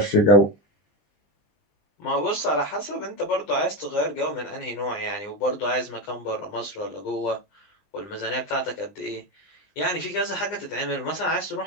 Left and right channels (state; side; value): late; right; 20 ms